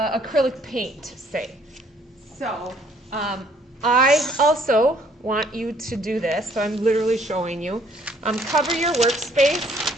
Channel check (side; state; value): both; normal; correlation 0.63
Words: paint, say. So I also want you to do this, so I'm literally showing you. Cover your workspace